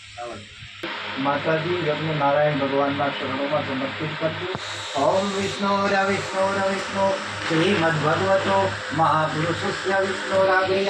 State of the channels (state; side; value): identical; both; correlation 1.00